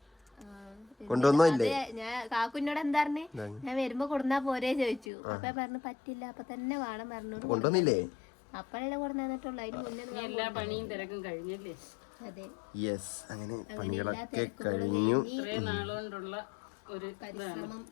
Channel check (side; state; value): right; drops out; at 5.1 s